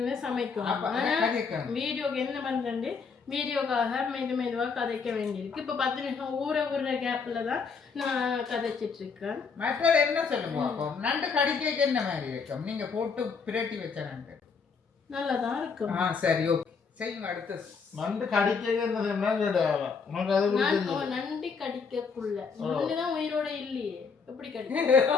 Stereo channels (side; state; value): right; quieter; 5.3 dB